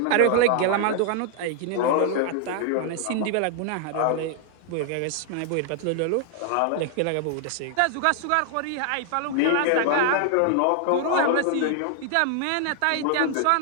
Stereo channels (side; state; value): both; different; correlation 0.00